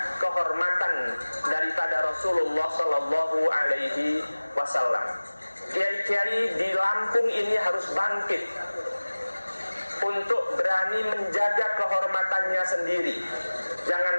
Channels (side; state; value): both; inverted; correlation -1.00